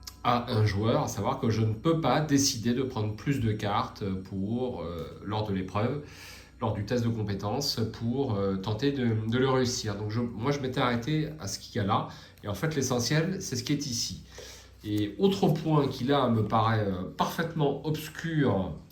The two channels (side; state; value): both; identical; correlation 1.00